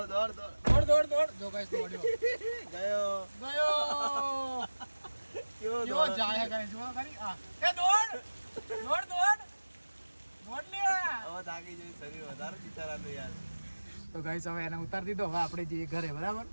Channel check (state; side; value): inverted; both; correlation -1.00